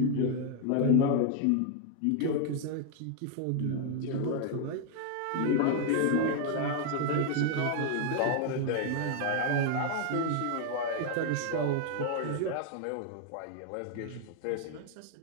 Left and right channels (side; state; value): both; different; correlation 0.00